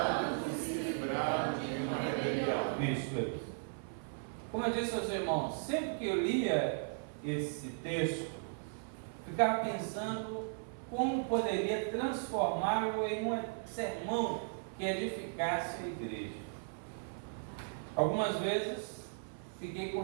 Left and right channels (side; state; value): left; silent; 53 dB below the other